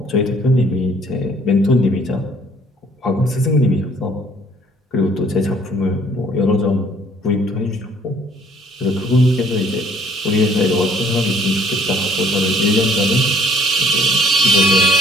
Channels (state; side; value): normal; both; correlation 0.59